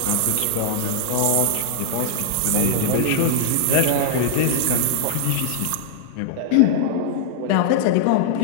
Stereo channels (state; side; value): different; both; correlation -0.01